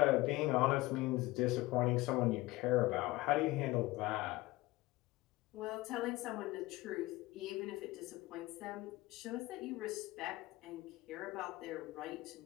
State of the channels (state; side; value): quieter; right; 19.3 dB